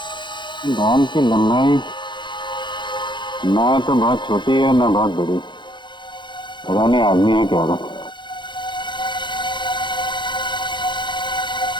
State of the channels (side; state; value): right; late; 0.23 ms